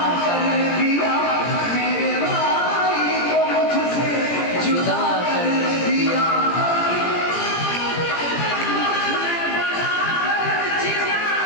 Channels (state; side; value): late; right; 17 ms